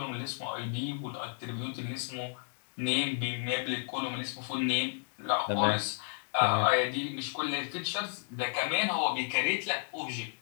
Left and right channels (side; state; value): right; silent; digital silence